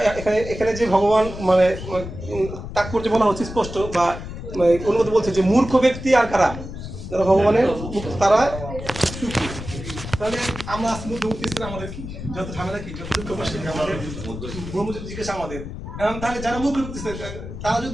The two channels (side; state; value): left; noise; rumble, 9 dB below the sound